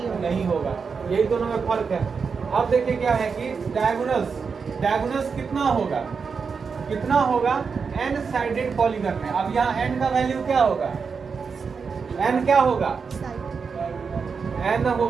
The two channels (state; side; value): quieter; left; 5.5 dB